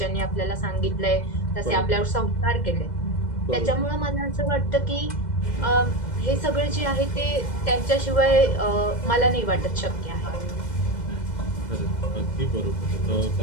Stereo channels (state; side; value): late; right; 2.0 ms